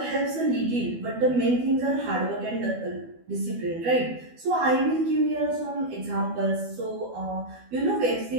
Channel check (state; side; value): late; left; 12 ms